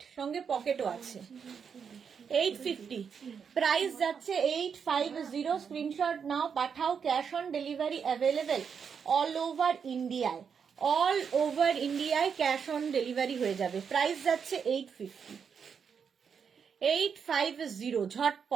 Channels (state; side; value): quieter; left; 6.7 dB